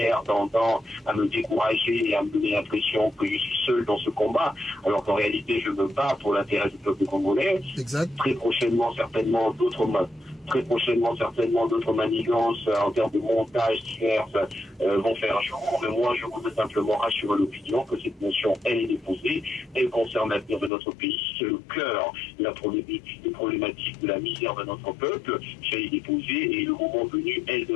tendant à me décourager et à me donner l'impression que je suis seul dans ce combat, alors qu'en réalité, je me bats pour l'intérêt du peuple congolais. Exact. Très prochainement, certainement, d'autres manigances en termes de montage divers vont faire jour. Mais moi, je voudrais simplement rassurer l'opinion que cette motion, elle est déposée, elle concerne l'avenir de notre pays, c'est le cœur des problématiques de la misère de notre peuple, elle est déposée et le moment venu, elle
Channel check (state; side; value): drops out; right; at 20.7 s